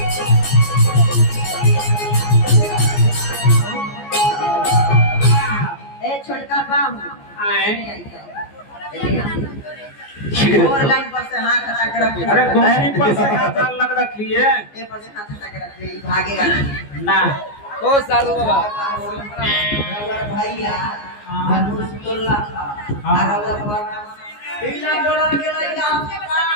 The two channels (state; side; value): late; right; 14 ms